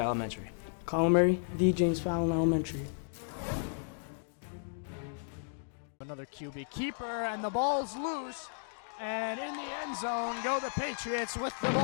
Elementary. Colin Murray, the James Fallon Elementary. Another QB keeper, and the ball's loose. And in the end zone go the Patriots with the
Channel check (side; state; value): right; silent; digital silence